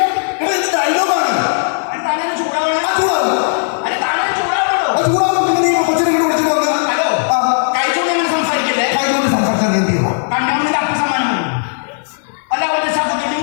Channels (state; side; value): silent; right; digital silence